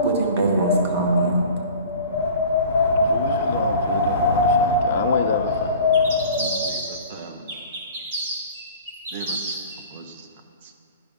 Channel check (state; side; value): inverted; both; correlation -0.43